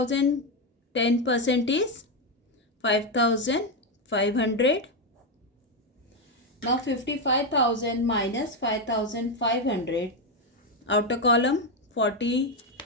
10% is 5,500. Now 55,000 minus 5,500. Outer column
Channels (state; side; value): normal; both; correlation 0.07